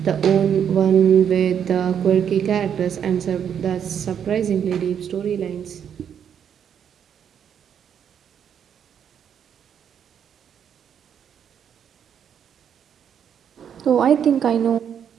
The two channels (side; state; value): left; quieter; 8.4 dB